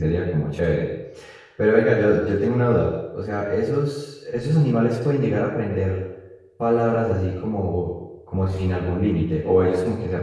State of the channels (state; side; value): identical; both; correlation 1.00